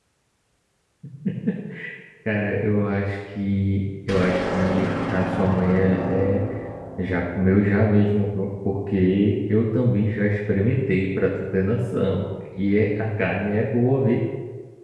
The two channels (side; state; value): both; identical; correlation 1.00